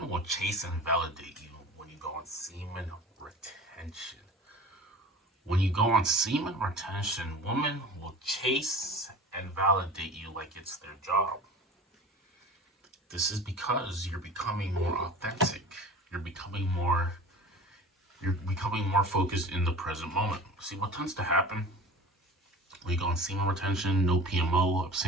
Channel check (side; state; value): both; normal; correlation 0.38